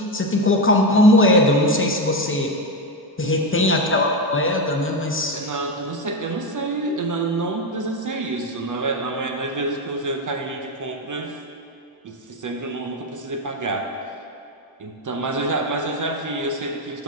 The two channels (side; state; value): both; normal; correlation 0.12